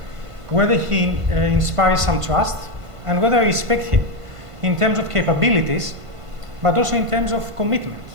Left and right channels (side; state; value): left; late; 1.5 ms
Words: whether he inspires some trust, and whether I respect him in terms of capabilities, but also in terms of commitment.